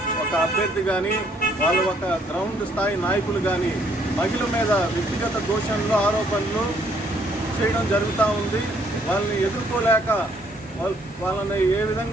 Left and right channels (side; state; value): both; normal; correlation 0.66